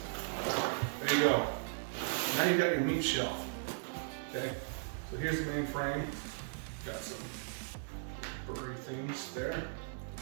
There you go. Now you got your meat shelf. Okay, so here's the main frame. Got some blurry things there.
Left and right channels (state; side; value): silent; left; digital silence